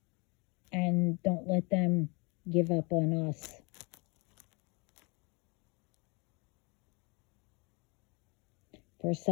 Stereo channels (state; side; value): quieter; right; 29.8 dB